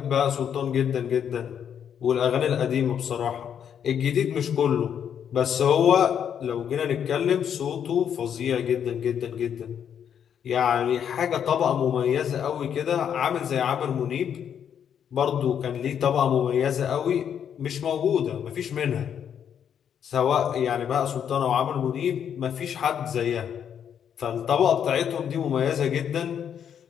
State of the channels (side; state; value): right; quieter; 8.5 dB